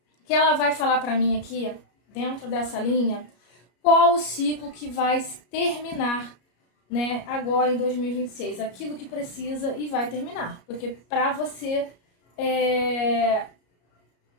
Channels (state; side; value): late; right; 33 ms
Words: que ela vai falar para mim aqui, dentro dessa linha, qual o ciclo que vai terminar, né, agora em 2026. Aquilo que precisa e vai terminar. Porque para você